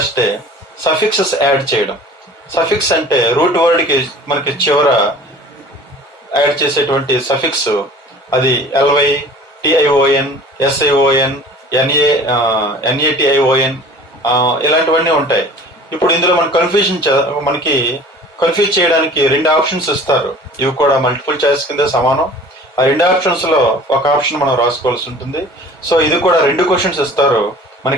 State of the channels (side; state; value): both; normal; correlation 0.45